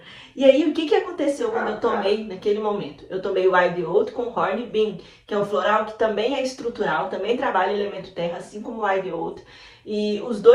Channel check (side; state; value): both; identical; correlation 1.00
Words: E aí, o que aconteceu quando eu tomei naquele momento? Eu tomei o Ideoto com Horn Bean, que é um floral que também é estrutural, também trabalha elemento terra, assim como o Ideoto. E os